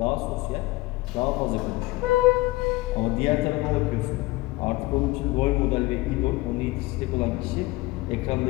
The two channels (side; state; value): right; quieter; 20.8 dB